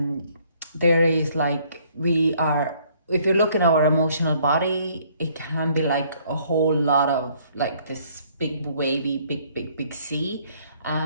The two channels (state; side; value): inverted; both; correlation -0.63